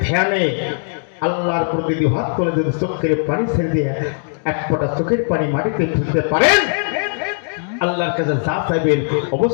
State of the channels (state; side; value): silent; right; digital silence